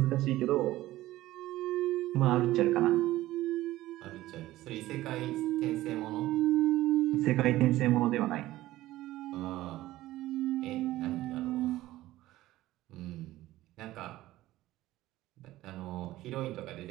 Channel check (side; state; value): left; quieter; 16.1 dB